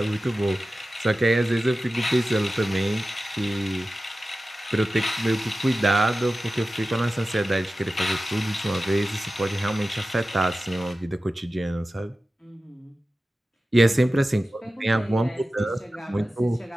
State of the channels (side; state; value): both; normal; correlation 0.95